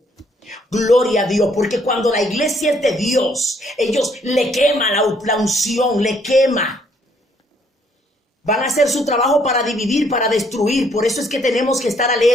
Gloria a Dios, porque cuando la iglesia es de Dios, ellos le queman la unción, le quema. Van a hacer su trabajo para dividir, para destruir. Por eso es que tenemos que estar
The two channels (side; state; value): both; normal; correlation 0.67